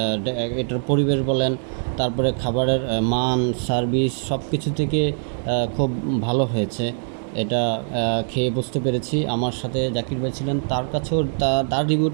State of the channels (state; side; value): silent; left; 64 dB below the other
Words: এটার পরিবেশ বলেন, তারপরে খাবারের মান, সার্ভিস সব কিছু থেকে খুব ভালো হয়েছে। এটা খেয়ে বুঝতে পেরেছি। আমার সাথে জাকির ভাই ছিলেন, তার কাছেও তার